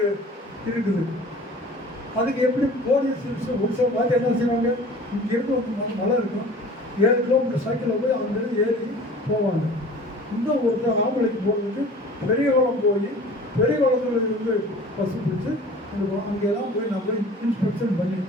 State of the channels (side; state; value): both; normal; correlation 0.44